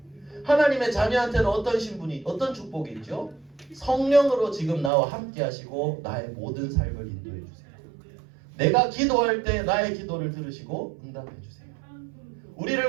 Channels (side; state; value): left; drops out; at 4.9 s